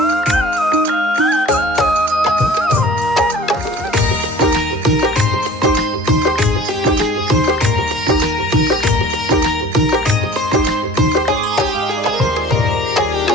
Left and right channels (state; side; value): normal; both; correlation 0.46